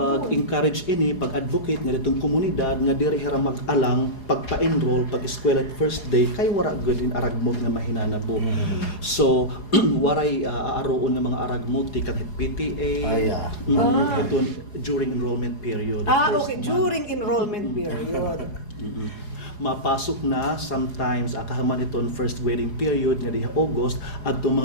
ini, pag-advocate nga ditong komunidad nga diri hira mag-alang pagpa-enroll pag eskwela at first day kay wara good in aragmot nga mahinanabo. So waray aaroon nga mga aragmot kang PTA. Ito during enrollment period. First Okay, month. during enrollment period. Mapasok na sometimes akahaman iton first grading period nga diha August adto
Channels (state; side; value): late; right; 4.8 ms